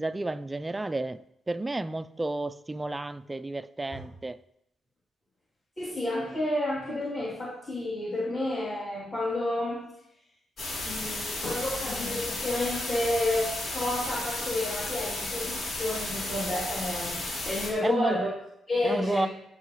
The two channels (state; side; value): normal; both; correlation 0.85